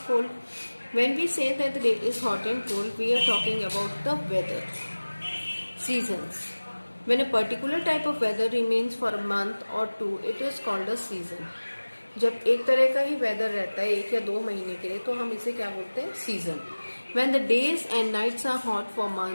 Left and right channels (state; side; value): inverted; both; correlation -1.00